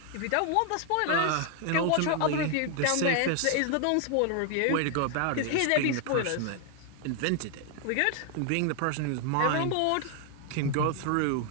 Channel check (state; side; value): different; both; correlation 0.00